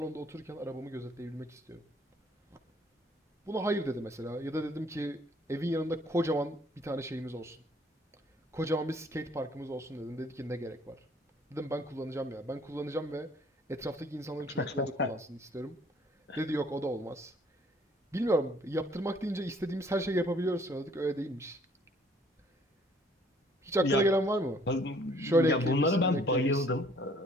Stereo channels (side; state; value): both; normal; correlation 0.60